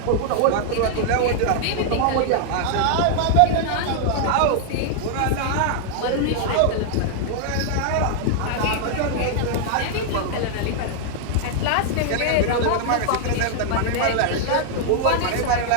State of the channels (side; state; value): both; different; correlation -0.01